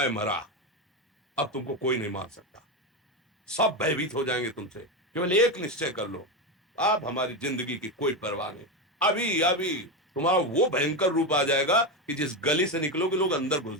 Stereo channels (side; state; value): both; normal; correlation 0.14